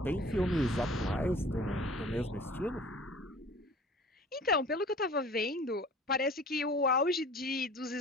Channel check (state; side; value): normal; both; correlation 0.45